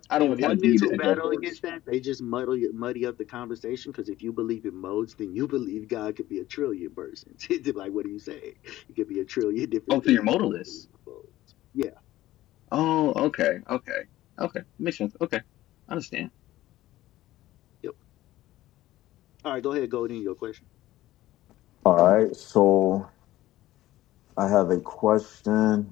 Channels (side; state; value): right; quieter; 15.5 dB